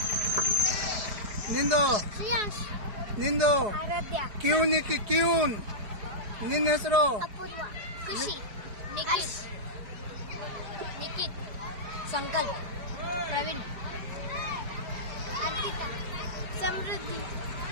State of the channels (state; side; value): late; left; 4.9 ms